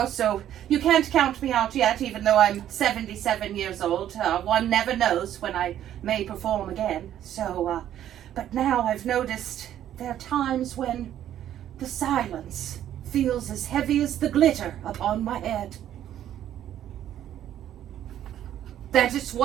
so you can't count me out yet, even though I'm 77 years old. One never knows when I may perform again. So, but now I've noticed there are times when the silence feels as heavy as the glitter upon my head. That is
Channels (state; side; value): quieter; left; 11.3 dB